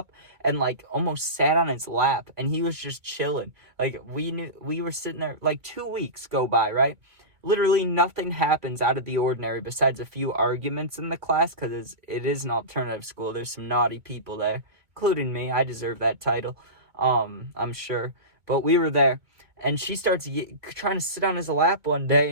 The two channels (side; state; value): left; late; 2.2 ms